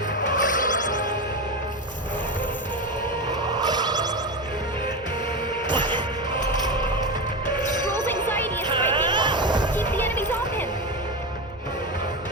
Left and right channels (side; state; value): both; normal; correlation 0.18